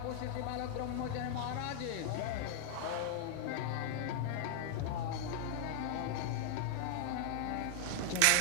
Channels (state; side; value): different; both; correlation 0.00